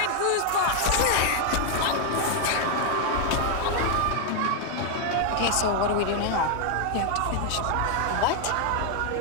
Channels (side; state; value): both; different; correlation 0.00